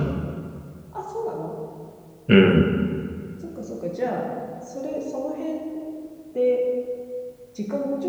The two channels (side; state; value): both; identical; correlation 1.00